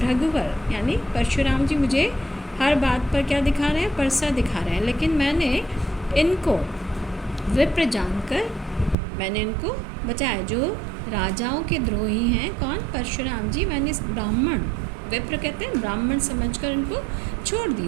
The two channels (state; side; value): drops out; left; at 9.0 s